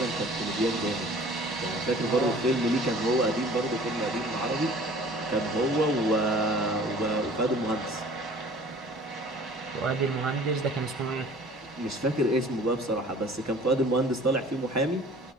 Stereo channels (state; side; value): normal; both; correlation 0.48